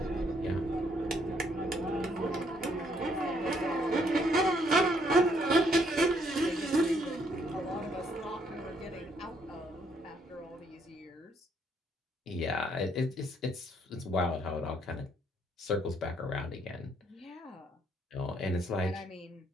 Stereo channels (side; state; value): both; normal; correlation 0.69